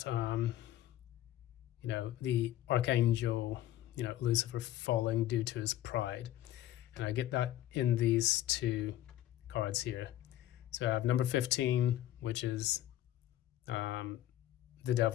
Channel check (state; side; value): quieter; right; 13.4 dB